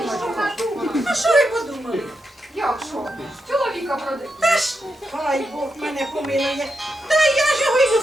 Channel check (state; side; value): normal; both; correlation 0.85